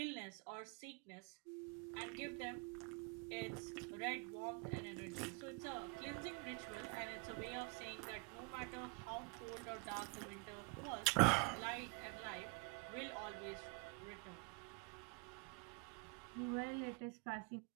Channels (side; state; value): left; quieter; 29.7 dB